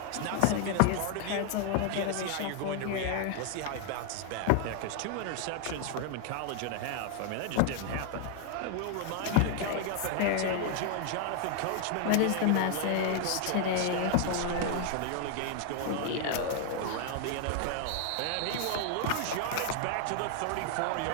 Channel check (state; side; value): different; both; correlation 0.00